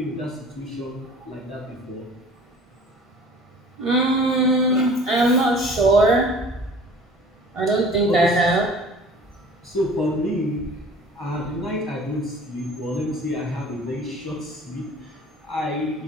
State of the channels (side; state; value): both; normal; correlation 0.47